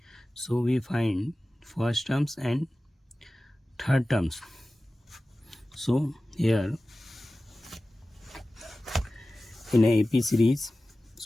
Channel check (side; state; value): both; normal; correlation 0.96